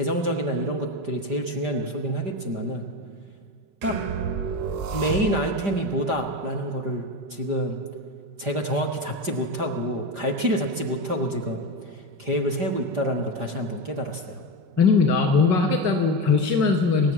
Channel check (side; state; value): left; late; 5.0 ms